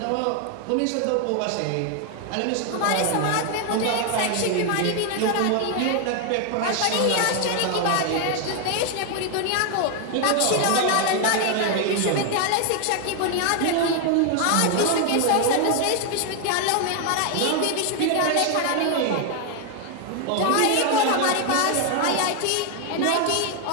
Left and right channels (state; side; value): different; both; correlation 0.01